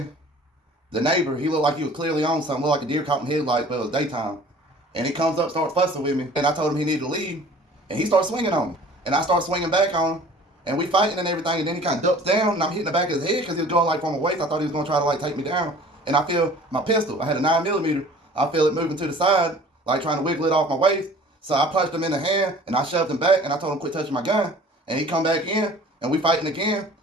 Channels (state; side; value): normal; both; correlation 0.48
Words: the neighbor, he looked like he was clearly on something, looked like a deer caught in headlights, but it was daytime. And he comes up, starts fussing with me, and I told him he needed to leave, and he starts swinging on me. And I start swinging back on him, and we fighting and everything, and then he kind of ducks down, and I'm hitting the back of his head because he was going like from a waist. I thought he was going to try to like take me down. And I feel my pistol, I had a 9mm, I feel it moving to the side, like trying to wiggle it off my waist. So I punched him in the hand, and I shoved him back, and I told him quit touching my gun. And he come back in, and we fighting again,